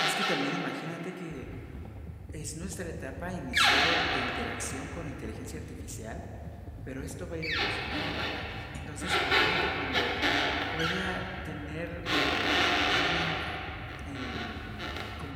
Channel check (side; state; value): both; identical; correlation 1.00